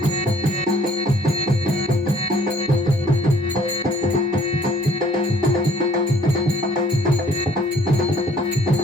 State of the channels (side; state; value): both; normal; correlation 0.58